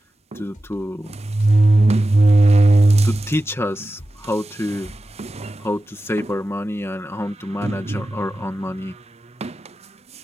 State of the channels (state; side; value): normal; both; correlation 0.93